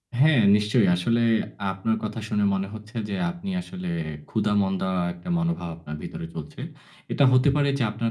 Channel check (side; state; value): both; identical; correlation 1.00